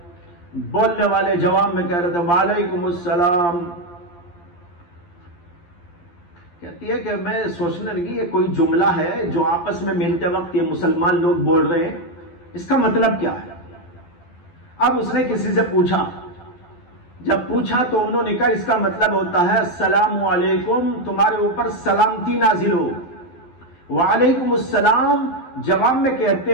بولنے والے جواب میں کہہ رہے تھے وعلیکم السلام. کہتی ہے کہ میں سوچنے لگی یہ کوئی جملہ ہے جو آپس میں ملتے وقت یہ مسلمان لوگ بول رہے ہیں، اس کا مطلب کیا ہے. اب اس نے کسی سے پوچھا، جب پوچھا تو انہوں نے کہا اس کا مطلب ہوتا ہے السلام علیکم، تمہارے اوپر سلامتی نازل ہو. وعلیکم السلام جواب میں کہتے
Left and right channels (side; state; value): right; late; 12 ms